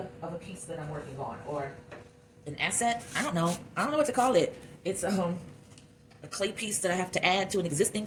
of a piece that I'm working on, or an asset. I don't know what to call it. It's a clay piece that I have to add to an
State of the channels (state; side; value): identical; both; correlation 1.00